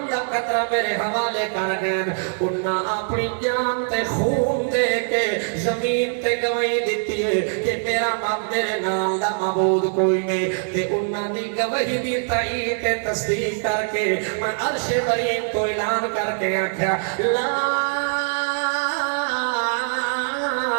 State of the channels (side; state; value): left; silent; 58 dB below the other